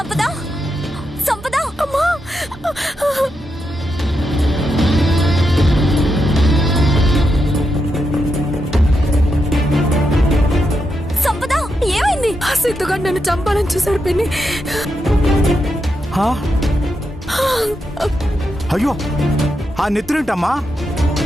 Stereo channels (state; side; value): normal; both; correlation 0.84